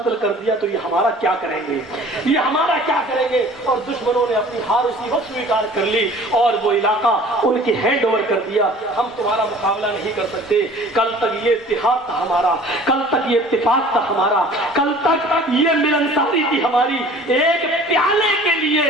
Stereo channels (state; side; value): normal; both; correlation 0.48